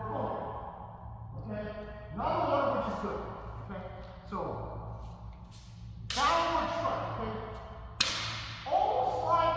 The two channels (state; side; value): identical; both; correlation 1.00